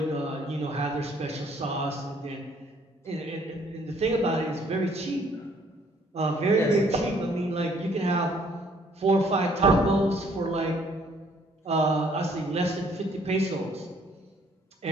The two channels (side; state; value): both; normal; correlation 0.62